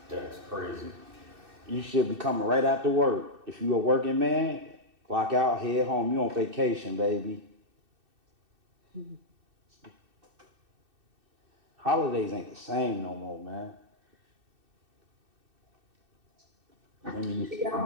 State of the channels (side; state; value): left; late; 2.6 ms